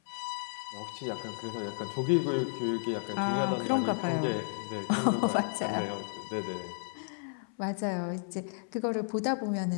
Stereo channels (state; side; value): silent; right; 56 dB below the other